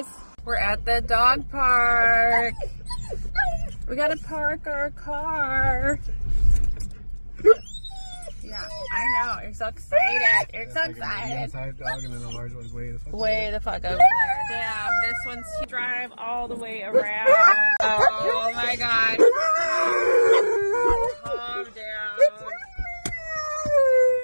We're at the dog park. We gotta park our car. Yeah, I know. You're so excited. You're so excited. The outside dog and then the large one's Way the fuck over there. Damn, this one's drive all the way around. Oh my god. Calm down.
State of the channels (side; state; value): both; inverted; correlation -1.00